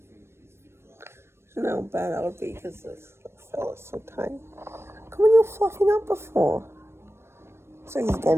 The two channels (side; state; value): left; late; 0.12 ms